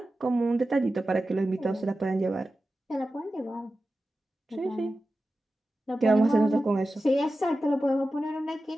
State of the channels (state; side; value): normal; both; correlation 0.93